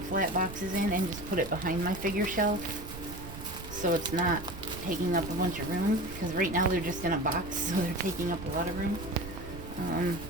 flat boxes in, and just put it behind my figure shelf so it's not taking up a bunch of room, because right now they're just in a box, so they're taking up a lot of room.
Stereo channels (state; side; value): noise; right; rumble, 12 dB below the sound